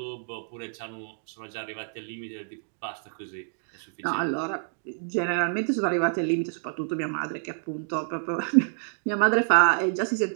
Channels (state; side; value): silent; left; digital silence